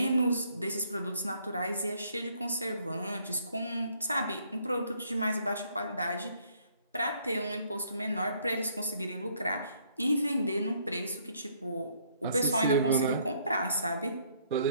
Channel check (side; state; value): both; inverted; correlation -0.66